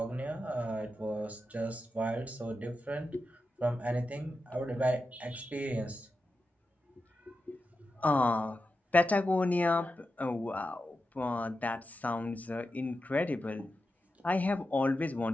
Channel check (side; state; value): both; normal; correlation 0.90